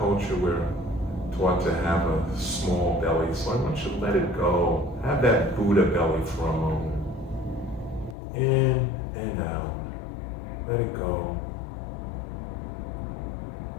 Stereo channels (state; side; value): drops out; right; at 8.2 s